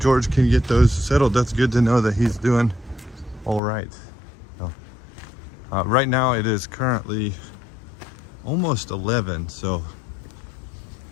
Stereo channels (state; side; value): drops out; right; at 3.6 s